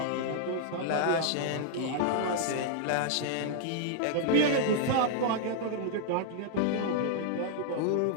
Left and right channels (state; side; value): different; both; correlation -0.01